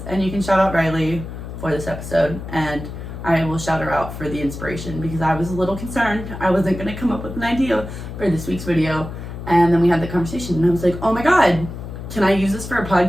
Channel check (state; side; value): noise; left; hum, 9 dB below the sound